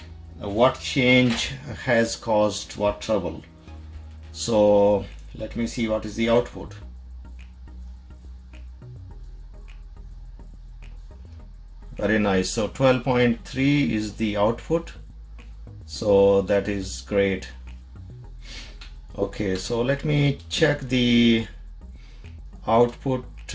what change has caused what trouble. So let me see what is the output. Very nice. So 12.3 is the output, so that is great. Okay, so let me check the output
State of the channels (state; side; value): identical; both; correlation 1.00